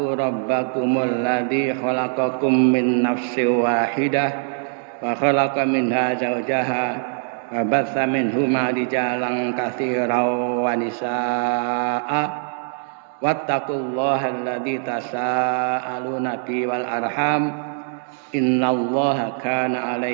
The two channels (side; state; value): left; silent; digital silence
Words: rabbakumul ladzi khalaqakum min nafsin wahidah wa khalaqa minha zawjaha wa batsa minhuma rijalan katsiran wa nisaa'a wattaqullaha alladzi tasaaluna bihi wal arham innallaha kana